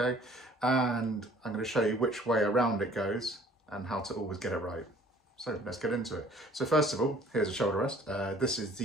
And I'm going to show you which way around it goes and how to always get it right. So let's get into it. So first of all, here's a shoulder rest. This is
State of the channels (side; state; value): both; normal; correlation 0.54